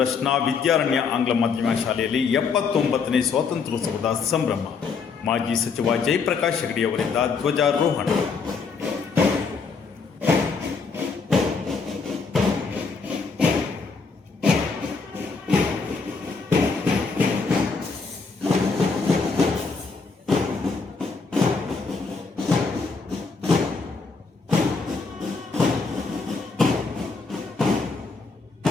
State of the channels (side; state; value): right; quieter; 4.8 dB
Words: ವಿದ್ಯಾರಣ್ಯ ಆಂಗ್ಲ ಮಾಧ್ಯಮ ಶಾಲೆಯಲ್ಲಿ 79ನೇ ಸ್ವಾತಂತ್ರ್ಯೋತ್ಸವದ ಸಂಭ್ರಮ. ಮಾಜಿ ಸಚಿವ ಜಯಪ್ರಕಾಶ್ ಹೆಗಡೆ ಅವರಿಂದ ಧ್ವಜಾರೋಹಣ.